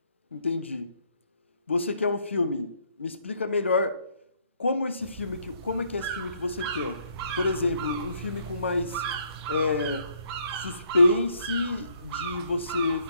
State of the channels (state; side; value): inverted; both; correlation -0.68